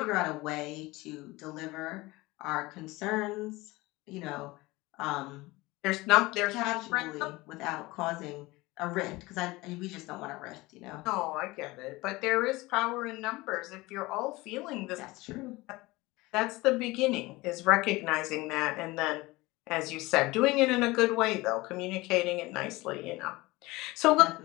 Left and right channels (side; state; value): right; quieter; 21.2 dB